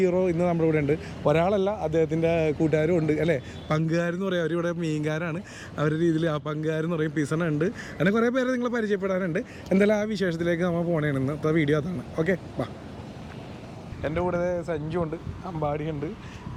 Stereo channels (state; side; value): identical; both; correlation 1.00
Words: ഇന്ന് നമ്മുടെ ഇവിടെ ഉണ്ട്. ഒരാളല്ല, അദ്ദേഹത്തിൻ്റെ കൂട്ടുകാരും ഉണ്ട് അല്ലേ, പങ്കുകാരെന്ന് പറയും. അവരിവിടെ മീൻകാരാണ്, അവരുടെ രീതിയിൽ ആ പങ്കുകാരെന്ന് പറയും. പിസണ ഉണ്ട്, അങ്ങനെ കുറേ പേരെ നിങ്ങൾ പരിചയപ്പെടാനുണ്ട്. എന്തായാലും ആ വിശേഷത്തിലേക്ക് നമ്മൾ പോകണേണ്. ഇന്നത്തെ വീഡിയോ അതാണ്. ഓക്കെ, വാ. എൻ്റെ കൂടെ സഞ്ജു ഉണ്ട്, അമ്പാടിയുണ്ട്,